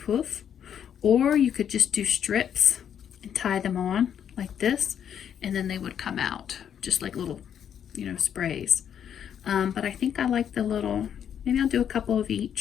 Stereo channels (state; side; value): quieter; right; 8.9 dB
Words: Or you could just do strips and tie them on like this, and then they would come out just like little, you know, sprays. But I think I like the little, maybe I'll do a couple of